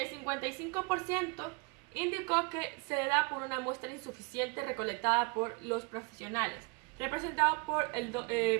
55% indicó que se da por una muestra insuficiente recolectada por los profesionales, representado por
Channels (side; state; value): left; quieter; 30.6 dB